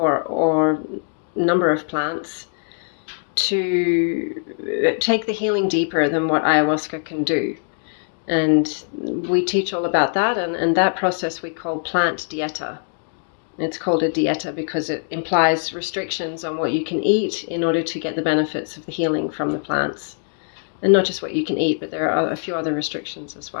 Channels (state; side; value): silent; right; digital silence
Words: number of plants to take the healing deeper than what ayahuasca can do. And we teach all about that, and that process we call Plant Dieta. It's called a dieta because it implies restrictions on what you can eat in order to get the benefits of the healing from the plants. And not just what you can eat, but there are a few other restrictions as